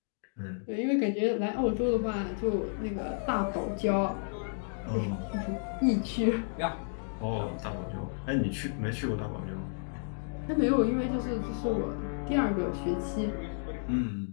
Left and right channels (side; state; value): right; silent; digital silence